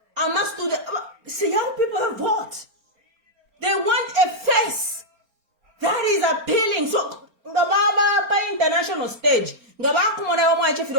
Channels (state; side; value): late; left; 4.4 ms